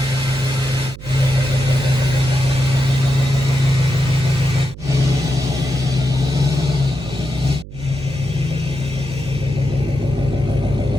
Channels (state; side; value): noise; right; hum, 14 dB below the sound